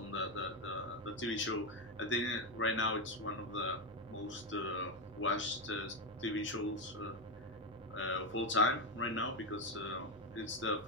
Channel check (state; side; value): normal; both; correlation 0.09